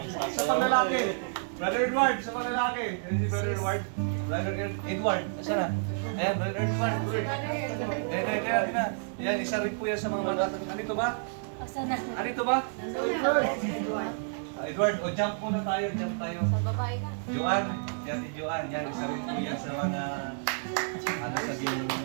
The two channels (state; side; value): silent; left; 58 dB below the other